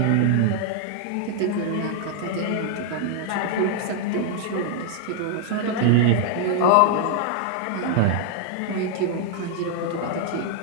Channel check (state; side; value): different; both; correlation 0.00